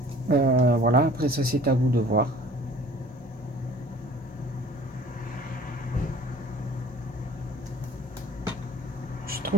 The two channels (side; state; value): both; normal; correlation 0.50